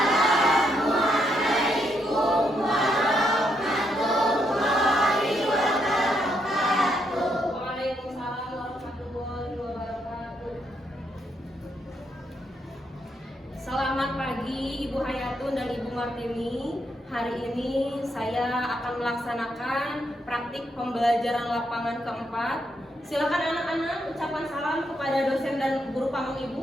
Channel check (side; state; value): both; normal; correlation 0.77